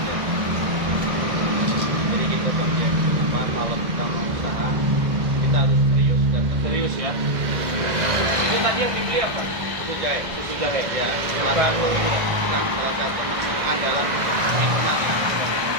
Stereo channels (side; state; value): left; late; 1.6 ms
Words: Jadi gitu Bang Jack. Apa kalau kita mau usaha kita harus serius dan Serius ya. Itu tadi yang dibeli apa? itu jahe. Susu jahe. Ya, Bukan. salah satu menu andalan minuman